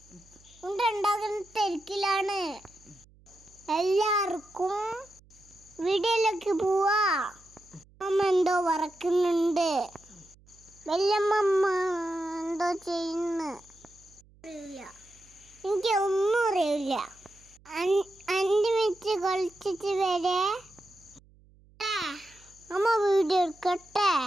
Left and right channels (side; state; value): right; noise; hum, 28 dB below the sound